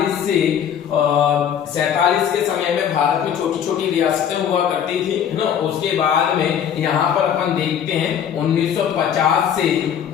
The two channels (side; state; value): right; quieter; 8.8 dB